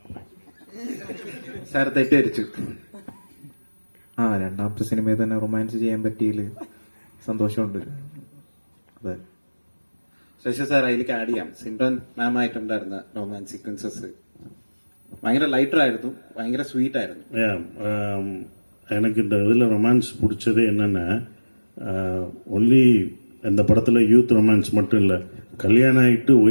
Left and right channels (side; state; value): both; inverted; correlation -1.00